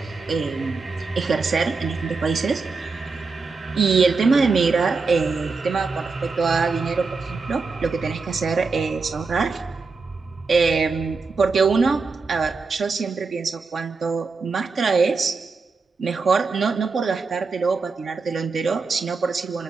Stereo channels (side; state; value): left; quieter; 4.4 dB